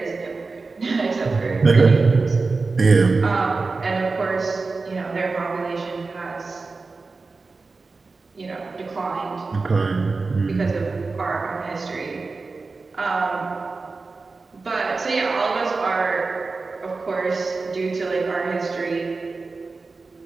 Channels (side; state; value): left; quieter; 4.0 dB